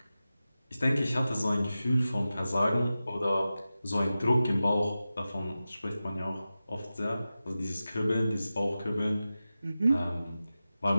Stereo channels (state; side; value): inverted; both; correlation -0.94